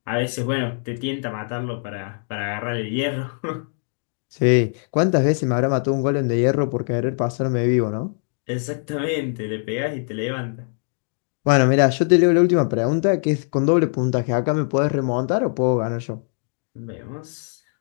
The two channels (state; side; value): silent; right; 64 dB below the other